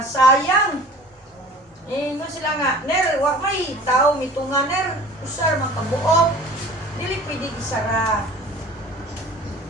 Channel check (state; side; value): normal; both; correlation 0.44